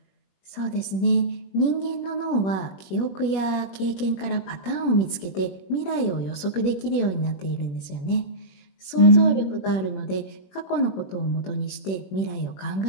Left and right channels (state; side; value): late; right; 21 ms